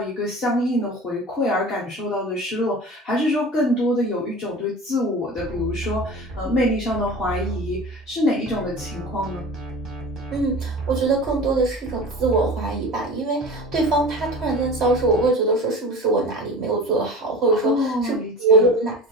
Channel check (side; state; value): both; normal; correlation 0.36